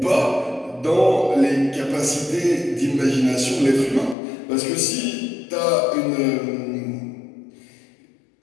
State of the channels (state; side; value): drops out; right; at 4.2 s